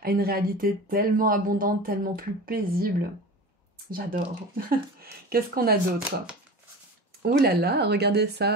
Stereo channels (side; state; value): both; normal; correlation 0.33